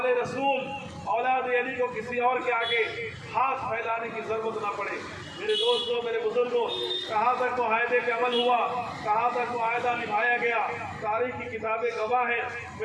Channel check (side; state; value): both; identical; correlation 1.00